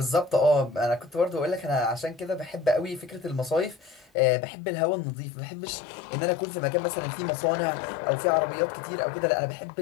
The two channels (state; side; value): drops out; right; at 4.1 s